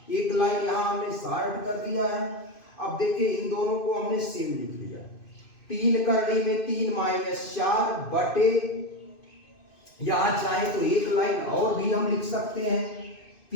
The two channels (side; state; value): right; late; 2.5 ms